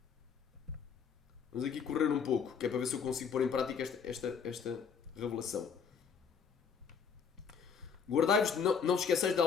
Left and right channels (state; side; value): quieter; right; 6.5 dB